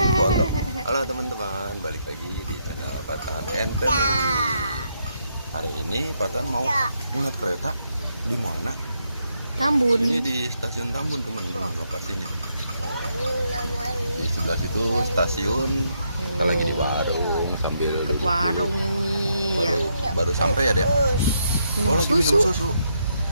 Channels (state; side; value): inverted; both; correlation -0.78